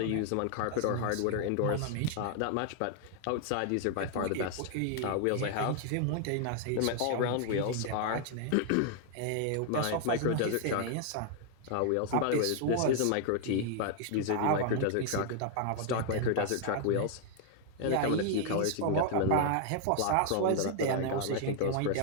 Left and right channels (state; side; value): different; both; correlation 0.00